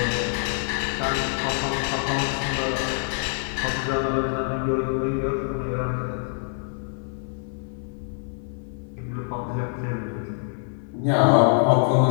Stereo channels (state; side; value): silent; right; 60 dB below the other